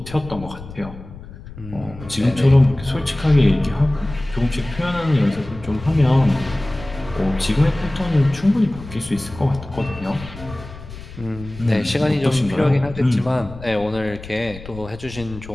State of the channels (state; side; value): noise; left; rumble, 15 dB below the sound